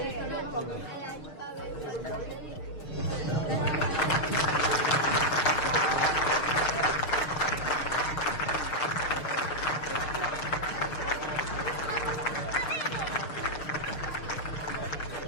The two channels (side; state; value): right; late; 6.6 ms